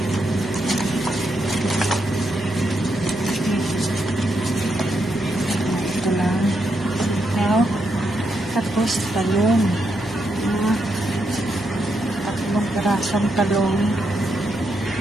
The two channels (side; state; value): both; normal; correlation 0.81